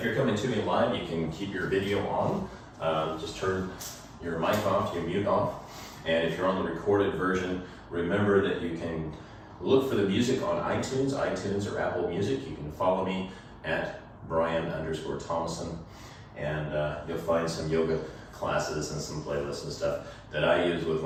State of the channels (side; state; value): both; identical; correlation 1.00